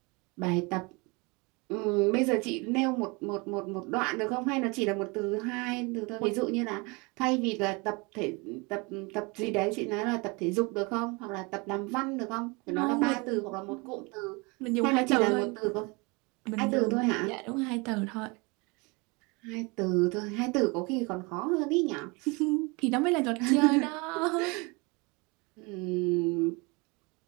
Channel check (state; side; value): quieter; left; 27.9 dB